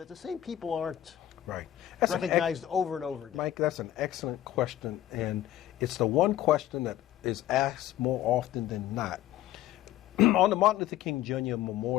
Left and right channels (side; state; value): right; quieter; 12.9 dB